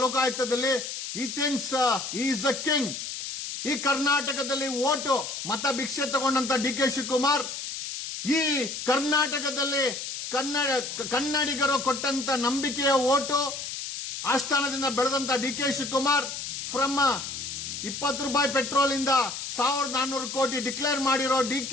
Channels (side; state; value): left; noise; hiss, 6 dB below the sound